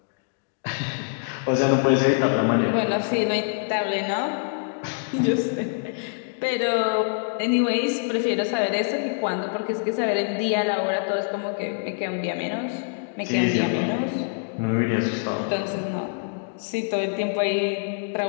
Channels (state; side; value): silent; right; digital silence